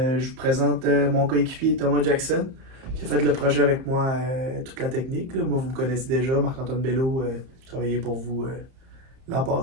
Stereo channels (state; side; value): late; left; 31 ms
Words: vous présente mon coéquipier Thomas Jackson qui a fait le projet avec moi, toute la technique, là. Moi, vous me connaissez déjà, Marc-Antoine Bello, j'ai travaillé pour vous l'an